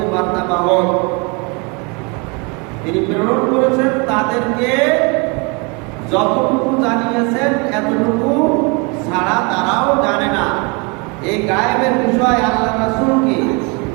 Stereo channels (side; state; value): left; quieter; 30.9 dB